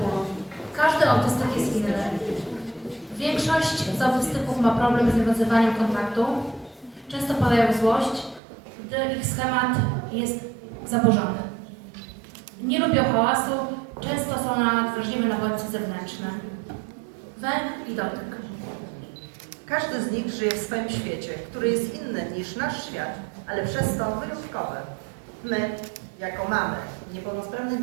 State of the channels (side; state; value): left; drops out; at 8.4 s